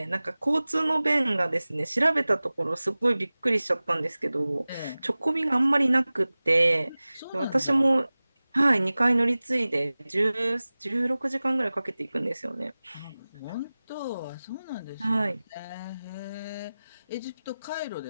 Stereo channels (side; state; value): both; inverted; correlation -0.98